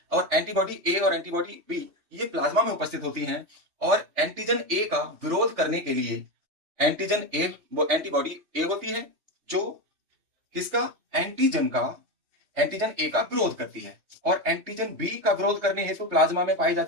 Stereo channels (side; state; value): left; late; 3.4 ms